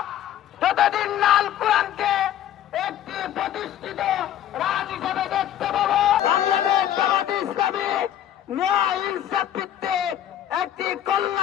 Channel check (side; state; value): right; quieter; 11.2 dB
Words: যতদিন না আল কোরআনকে একটি প্রতিষ্ঠিত রাজ হিসেবে দেখতে পাবো। বাংলাদেশ জামাত ইসলামী ন্যায় ইনসাফ ভিত্তিক একটি